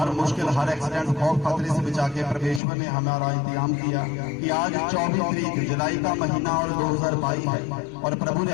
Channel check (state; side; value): drops out; right; at 2.6 s